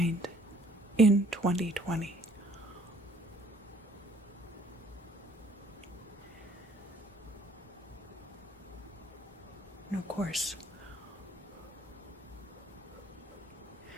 in 2020. And of course,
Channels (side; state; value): both; normal; correlation 0.61